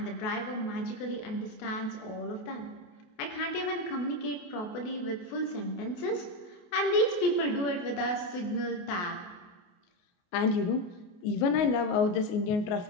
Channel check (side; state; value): right; late; 28 ms